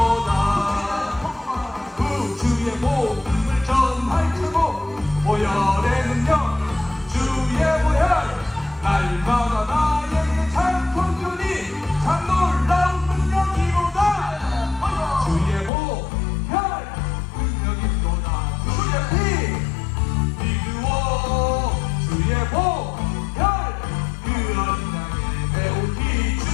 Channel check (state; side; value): drops out; right; at 15.7 s